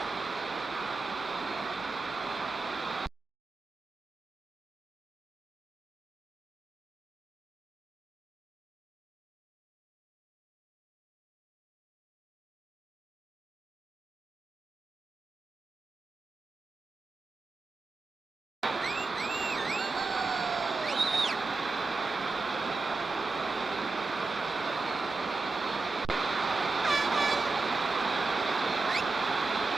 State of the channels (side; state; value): left; quieter; 3.7 dB